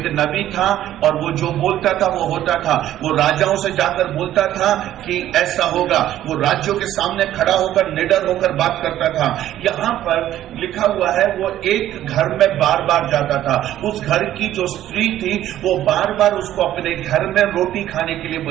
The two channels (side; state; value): left; quieter; 12.7 dB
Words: नबी था और वो जो बोलता था वो होता था। वो राजाओं से जाकर बोलता था कि ऐसा होगा, वो राज्यों के सामने खड़ा होकर निडर होकर बात करता था। यहाँ पर लिखा हुआ है वो एक घर में बार बार जाता था। उस घर की जो स्त्री थी वो बार बार उसको अपने घर में रोटी खाने के लिए